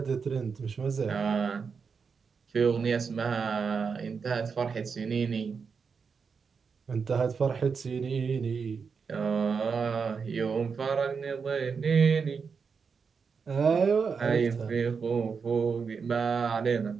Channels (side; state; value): left; quieter; 5.7 dB